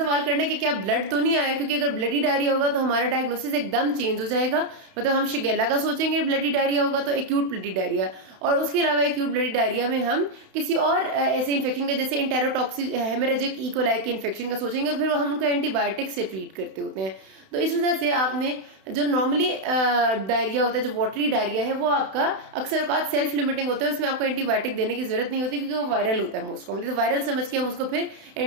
करना कि क्या ब्लड तो नहीं आया, क्योंकि अगर ब्लडी डायरिया होगा तो हमारा डायग्नोसिस एकदम चेंज हो जाएगा। मतलब हम शिगेला का सोचेंगे ब्लडी डायरिया होगा तो एक्यूट ब्लडी डायरिया, और उसके अलावा एक्यूट ब्लडी डायरिया में हम किसी और ऐसे इन्फेक्शन का जैसे इंटेरोटॉक्सिक हेमरेजिक इकोलाई के इन्फेक्शन का सोचेंगे, और फिर हम उनको एंटीबायोटिक से ट्रीट करते होते हैं। तो इस वजह से आपने जो नॉर्मली डायरिया होता है, जो वाटरी डायरिया है, वो आपका अक्सर औकात सेल्फ लिमिटिंग होता है, उसमें आपको एंटीबायोटिक देने की जरूरत नहीं होती, क्योंकि वो वायरल होता है मोस्ट कॉमनली। तो वायरल समझ के हम उसको फिर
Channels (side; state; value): left; late; 32 ms